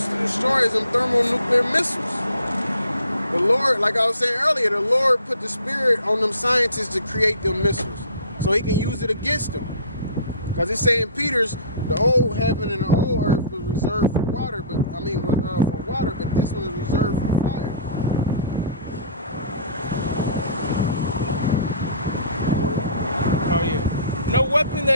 to destroy is them thermonuclear missiles. The Lord, like I was saying earlier, the Lord put the spirit on them scientists to create them missiles so he can use it against them. Because it's saying Peter's, the old heaven and the old earth was reserved for water, but for water, but this one is reserved for fire. Oh yeah. No weapon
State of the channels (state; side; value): inverted; both; correlation -0.47